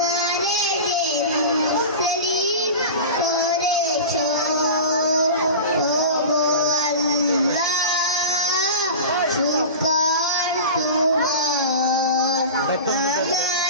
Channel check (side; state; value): both; inverted; correlation -0.32